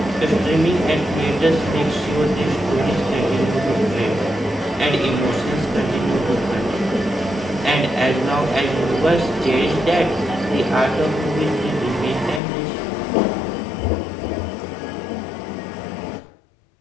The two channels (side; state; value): right; drops out; at 12.4 s